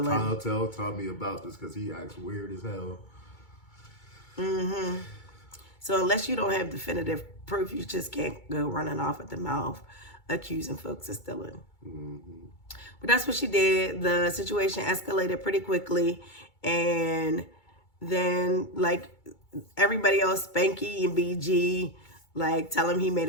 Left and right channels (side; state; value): right; late; 2.2 ms